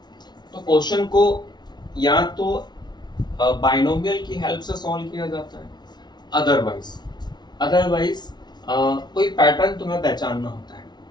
तो क्वेश्चन को या तो बाइनोमियल की हेल्प से सॉल्व किया जाता है, अदरवाइज कोई पैटर्न तुम्हें पहचानना होता है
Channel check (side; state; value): right; late; 0.20 ms